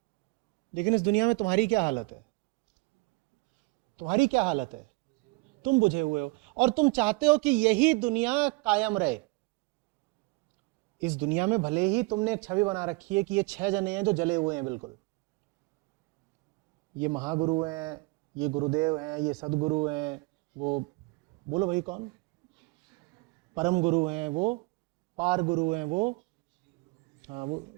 लेकिन इस दुनिया में तुम्हारी क्या हालत है? तुम्हारी क्या हालत है? तुम बुझे हुए हो, और तुम चाहते हो कि यही दुनिया कायम रहे। इस दुनिया में भले ही तुमने एक छवि बना रखी है कि ये 6 जने हैं जो जले हुए हैं, बिल्कुल ये महागुरु हैं, ये गुरुदेव हैं, ये सदगुरु हैं, वो बोलो भाई कौन? परम गुरु हैं, वो पार गुरु हैं, वो हाँ वो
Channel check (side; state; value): left; quieter; 26.1 dB